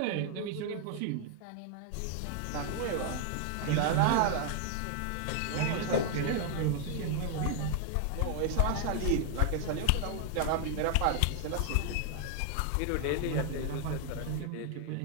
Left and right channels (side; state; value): both; different; correlation 0.00